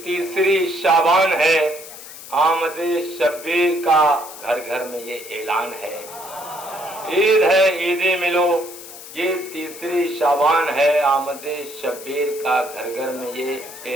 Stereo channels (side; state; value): left; noise; hiss, 14 dB below the sound